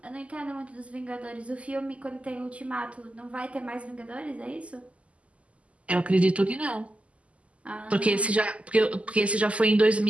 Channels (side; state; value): left; late; 0.062 ms